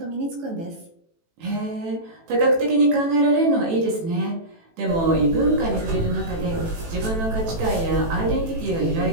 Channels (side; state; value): left; late; 18 ms